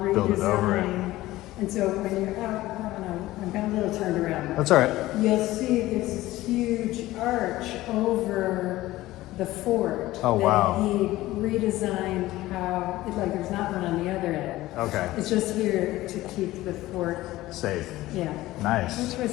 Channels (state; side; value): quieter; right; 16.9 dB